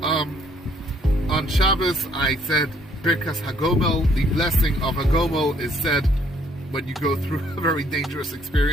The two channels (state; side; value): normal; both; correlation 0.66